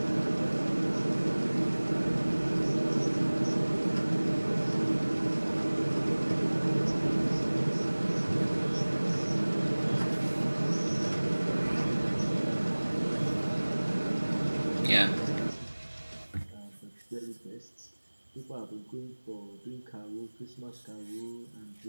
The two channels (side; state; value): both; inverted; correlation -1.00